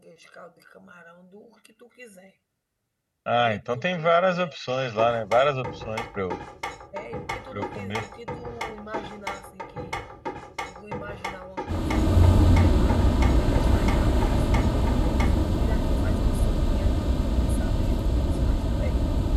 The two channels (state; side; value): identical; both; correlation 1.00